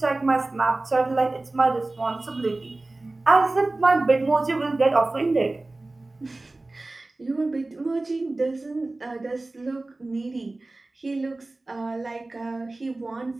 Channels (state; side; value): quieter; left; 3.0 dB